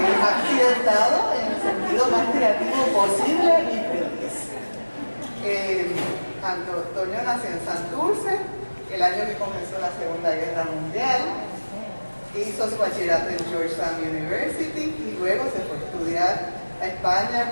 en el sentido más creativo posible y feliz. Antonio nació en Santurce el año que comenzó la Segunda Guerra Mundial, hizo su bachillerato en Georgetown University y luego se fue a estudiar a España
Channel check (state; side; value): inverted; both; correlation -1.00